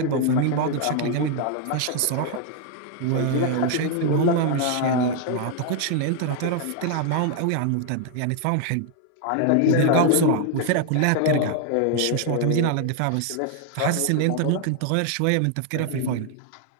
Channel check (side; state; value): both; different; correlation 0.00